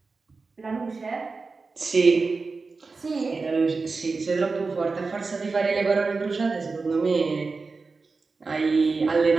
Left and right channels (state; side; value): quieter; left; 4.2 dB